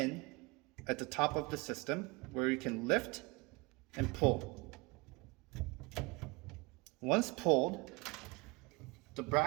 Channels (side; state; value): left; quieter; 26.0 dB